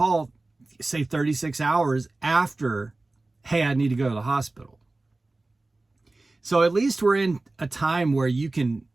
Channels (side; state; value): left; quieter; 3.1 dB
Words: say 36 hours after, hey, I need to go to the hospital. So at least we're in a time where you can,